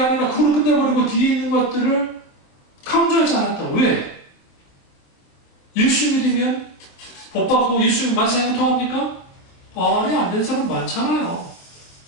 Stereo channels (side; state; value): right; late; 24 ms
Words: 그걸로 끝내버리고 뒤에 있는 것들을 강조하지 않았다. 왜? 예수 믿으면 복 받고 예수 만사형을 통합니까? 아니, 안 된 사람 많잖아요.